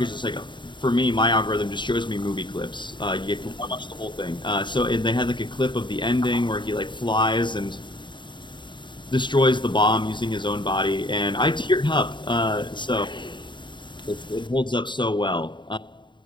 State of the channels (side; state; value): right; late; 0.23 ms